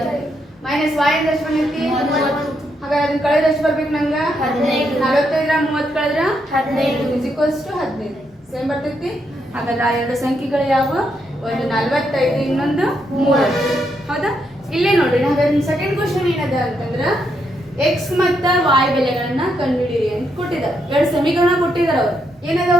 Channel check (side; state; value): both; normal; correlation 0.78